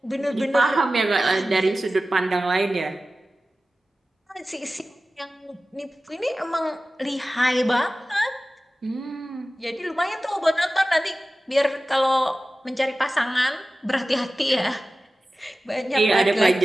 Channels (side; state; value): both; normal; correlation 0.96